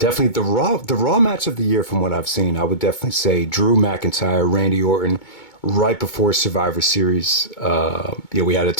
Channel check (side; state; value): right; late; 2.2 ms